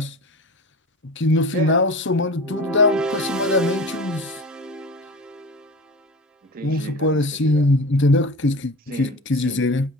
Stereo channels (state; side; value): normal; both; correlation 0.33